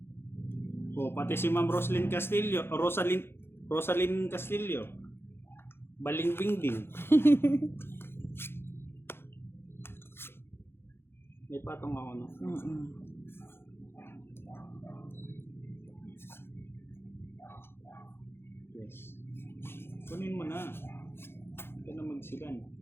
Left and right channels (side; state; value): right; late; 0.11 ms